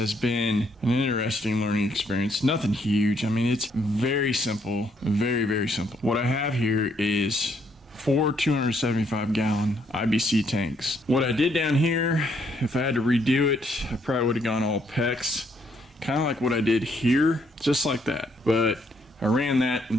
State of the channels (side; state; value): both; normal; correlation 0.71